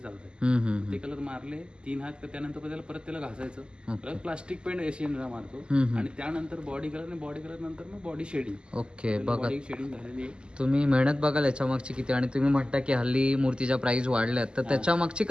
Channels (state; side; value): late; left; 0.049 ms